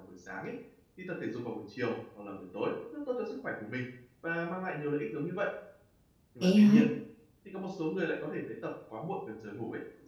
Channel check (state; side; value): identical; both; correlation 1.00